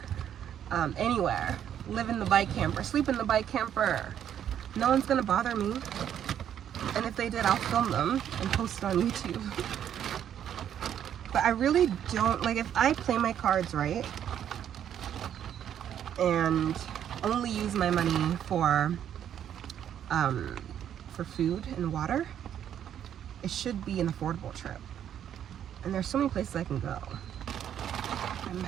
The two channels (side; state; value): left; quieter; 9.8 dB